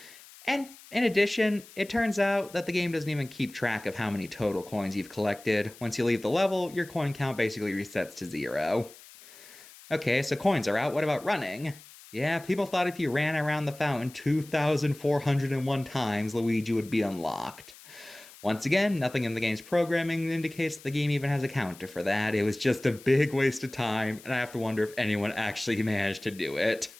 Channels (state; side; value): noise; left; hiss, 20 dB below the sound